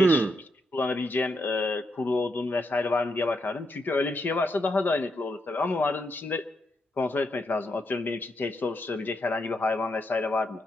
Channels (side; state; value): both; normal; correlation 0.80